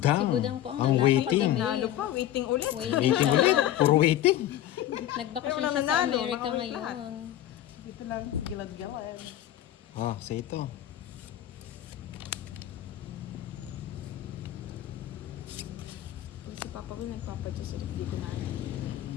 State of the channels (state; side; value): quieter; right; 12.7 dB